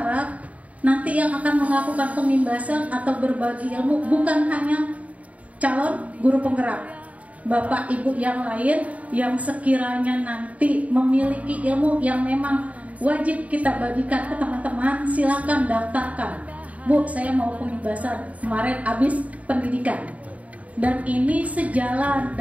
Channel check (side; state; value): left; late; 0.068 ms